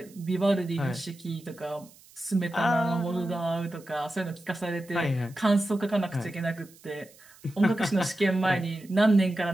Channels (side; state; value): right; noise; hiss, 25 dB below the sound